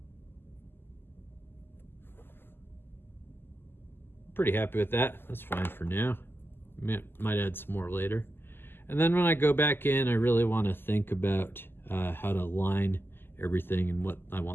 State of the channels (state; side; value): late; right; 0.10 ms